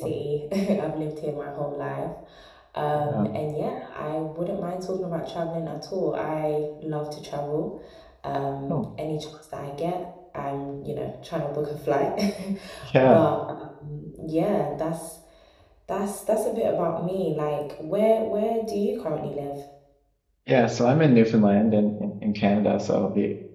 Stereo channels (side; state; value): both; identical; correlation 1.00